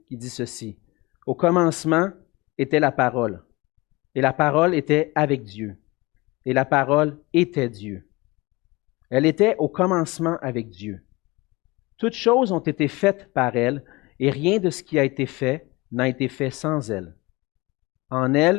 qui dit ceci. Au commencement était la parole, et la parole était avec Dieu, et la parole était Dieu. Elle était au commencement avec Dieu. Toutes choses ont été faites par elle, et rien de ce qui a été fait n'a été fait sans elle. En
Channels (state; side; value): quieter; right; 23.2 dB